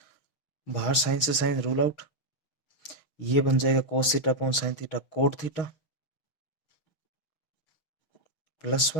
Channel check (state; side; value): late; right; 6.5 ms